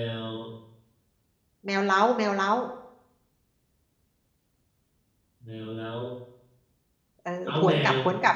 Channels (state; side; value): identical; both; correlation 1.00